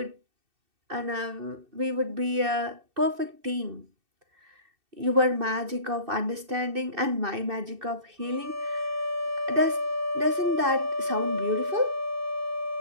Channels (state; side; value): late; left; 2.6 ms